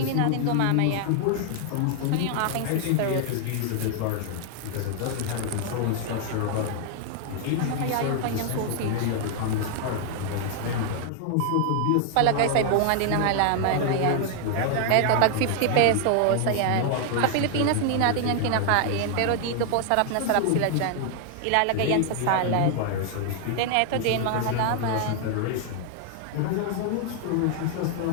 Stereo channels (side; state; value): both; different; correlation 0.00